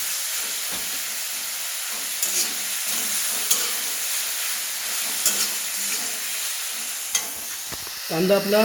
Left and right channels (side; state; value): both; identical; correlation 1.00